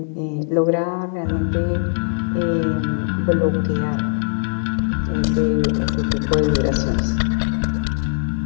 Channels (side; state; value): right; silent; 63 dB below the other